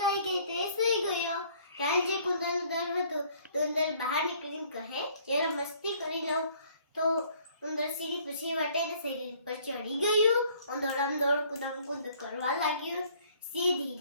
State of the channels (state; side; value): inverted; both; correlation -0.59